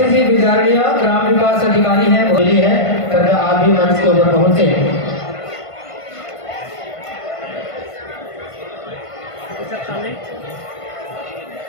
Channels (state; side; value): late; right; 1.5 ms